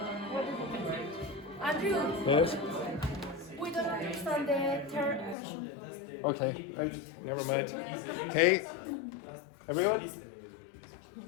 Andrew, Yes. we don't understand the third question. Okay. Never mind. Okay. Everyone.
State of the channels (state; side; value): drops out; right; at 5.4 s